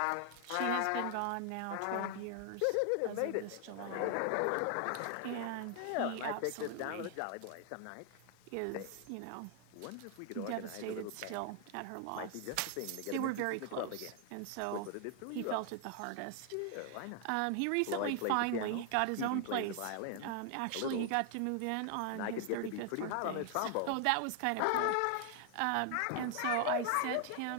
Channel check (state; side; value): different; both; correlation 0.00